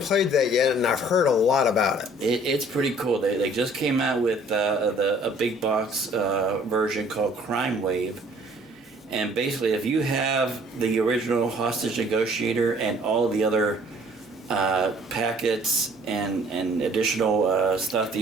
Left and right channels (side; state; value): both; normal; correlation 0.56